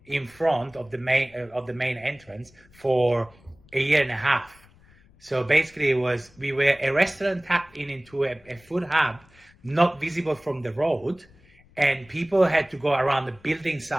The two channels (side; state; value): left; noise; rumble, 28 dB below the sound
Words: in front of the main entrance for a year and a half. So basically we were a restaurant tapped into a food hub, not visible from the road, and people had to go around the building